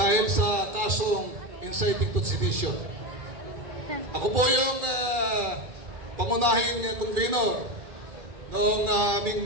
sa kasong inciting to sedition. Ako po yung pangunahing convener noong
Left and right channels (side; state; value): left; late; 2.4 ms